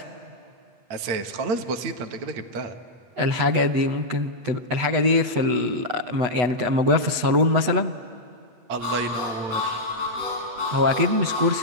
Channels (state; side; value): late; left; 8.1 ms